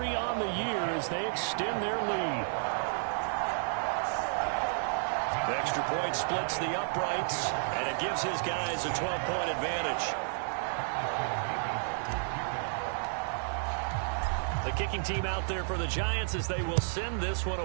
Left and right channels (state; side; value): silent; left; digital silence